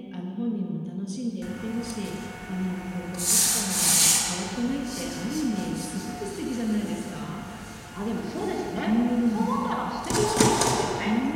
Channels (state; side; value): identical; both; correlation 1.00